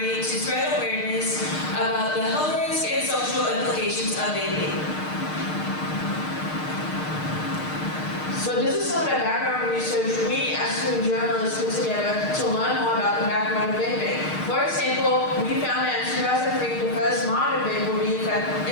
to spread awareness about the health risks and social implications of vaping? So this is some of the background research we as student journalists put together to learn more about the background of vaping. For example, we found that in 2003, the first modern vape would be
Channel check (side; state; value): right; late; 6.5 ms